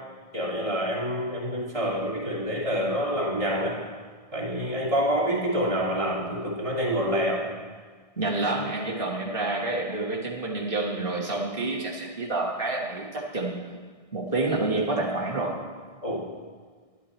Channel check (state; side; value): late; right; 1.6 ms